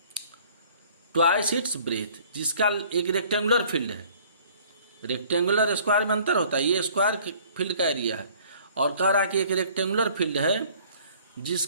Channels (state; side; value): inverted; both; correlation -0.54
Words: twice its breadth, जिसका एक रेक्टेंगुलर फील्ड है, रेक्टेंगुलर स्क्वायर में अंतर होता है, ये स्क्वायर फील्ड का एरिया है, और कह रहा है कि एक रेक्टेंगुलर फील्ड है